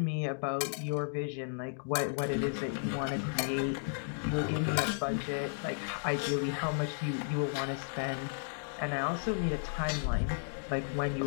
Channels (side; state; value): right; silent; digital silence